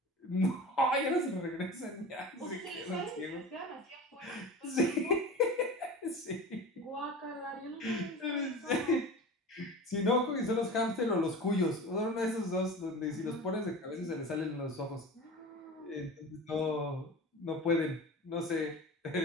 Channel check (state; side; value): normal; both; correlation 0.33